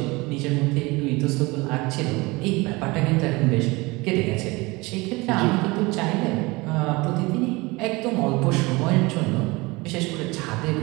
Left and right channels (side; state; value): left; quieter; 23.6 dB